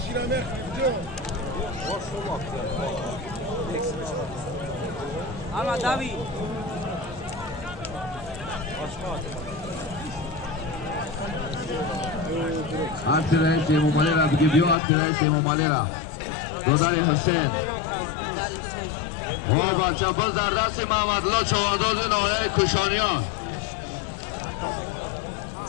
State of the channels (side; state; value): right; drops out; at 14.8 s